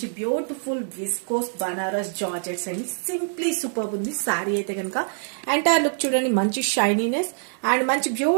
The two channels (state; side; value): silent; left; digital silence